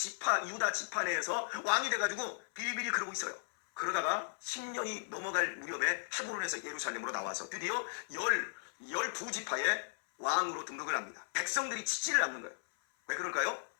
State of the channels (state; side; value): silent; right; 54 dB below the other